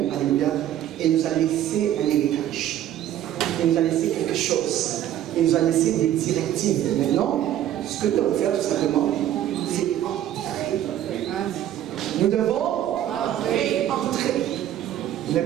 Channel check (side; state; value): left; quieter; 11.8 dB